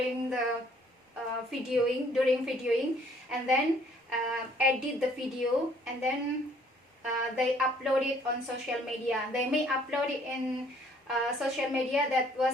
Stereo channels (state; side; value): normal; both; correlation 0.61